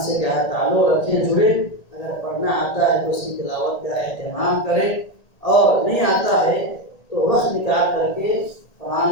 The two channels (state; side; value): late; right; 1.8 ms